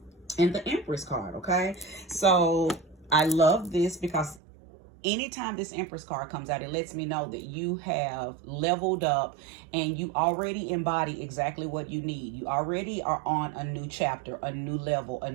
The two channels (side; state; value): left; drops out; at 4.4 s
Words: the Empress card, okay? So I love this because anytime this Empress card comes out, it lets me know that you have leveled up and you already embody exactly what you need. You already are on a new chapter, a new level, a